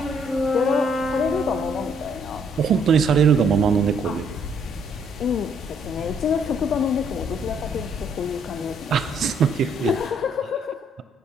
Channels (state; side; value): normal; both; correlation 0.67